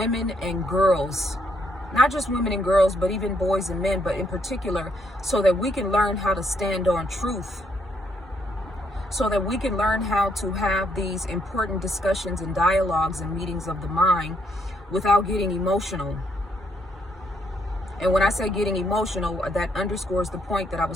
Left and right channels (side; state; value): both; normal; correlation 0.73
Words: and girls, not just women and girls, but even boys and men, but in particular, so that we can learn how to stand on truth, so that we can learn how to have these important discussions and dialogues and meetings of the mind without getting emotional. And when I say getting emotional, that underscores the point that I